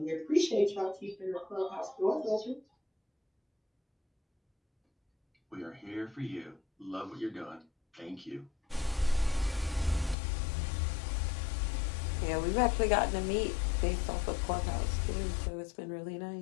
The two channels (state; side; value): drops out; right; at 10.2 s